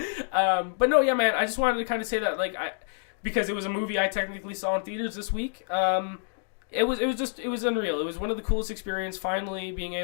But no, yeah, man. I just wanted to kind of say that, because it was a movie I technically saw in theaters this week. It was unreal. It was one of the coolest experiences. Finally, being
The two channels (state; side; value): silent; right; digital silence